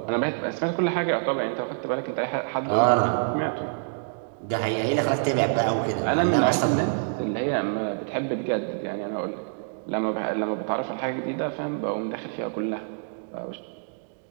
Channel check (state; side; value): silent; left; digital silence